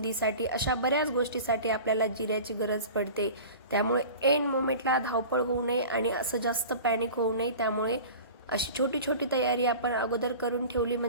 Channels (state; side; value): inverted; both; correlation -0.38